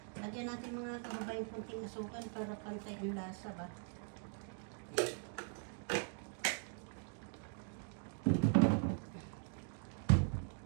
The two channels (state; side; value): silent; left; 50 dB below the other